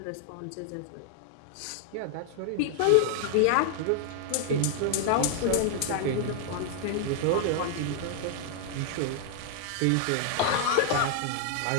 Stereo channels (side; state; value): both; different; correlation 0.00